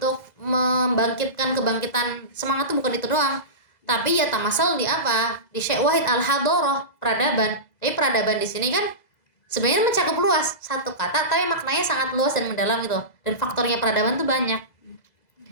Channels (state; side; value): late; right; 2.0 ms